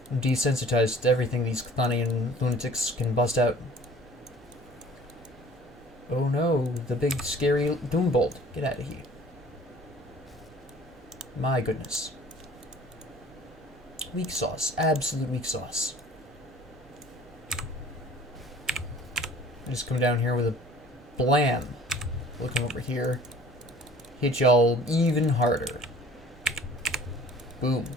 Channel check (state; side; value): normal; both; correlation 0.50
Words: I'm desensitized to everything these Chthonian lunatics can bust out. Oh no, the big scary Doombolt. Get out of here. My goodness. Weak sauce. Absolute weak sauce. I just come down here with a blam. Looking over here. Hit y'all even harder. Boom.